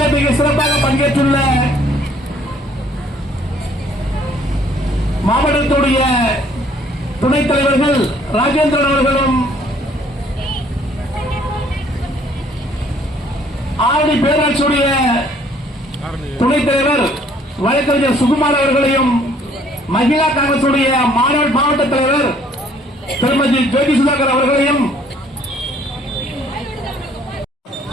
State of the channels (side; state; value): both; normal; correlation 0.61